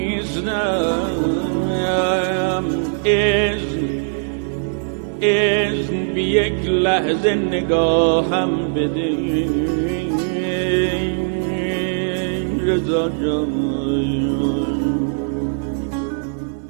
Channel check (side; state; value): left; silent; 63 dB below the other